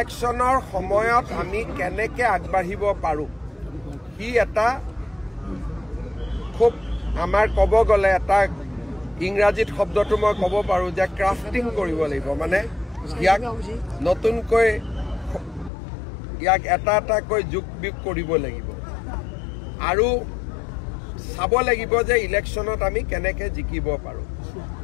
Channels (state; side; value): drops out; right; at 15.7 s